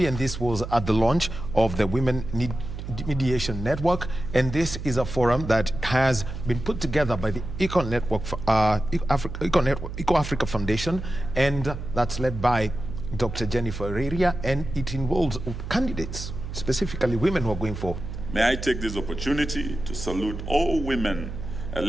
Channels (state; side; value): noise; right; hum, 8 dB below the sound